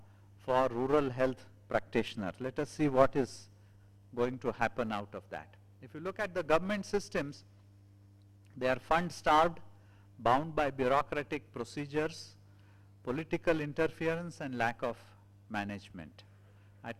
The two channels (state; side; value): identical; both; correlation 1.00